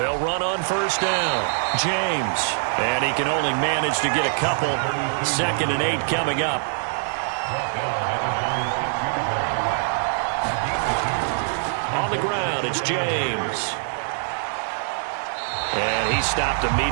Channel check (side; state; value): left; silent; digital silence